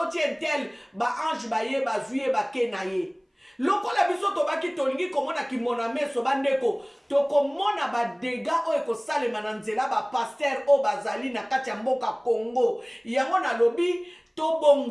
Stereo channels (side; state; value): both; identical; correlation 1.00